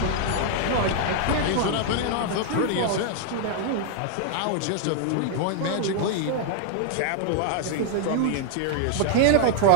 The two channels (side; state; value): both; different; correlation 0.00